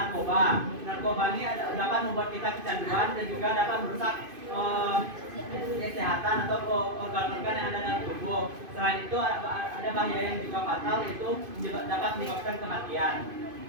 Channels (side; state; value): left; late; 2.5 ms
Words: Narkoba ini dapat membuat kita kecanduan dan juga dapat merusak kesehatan atau organ-organ yang ada dalam tubuh. Selain itu ada bahaya yang juga fatal, yaitu dapat menyebabkan kematian.